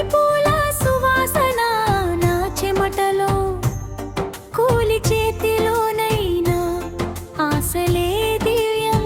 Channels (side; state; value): both; identical; correlation 1.00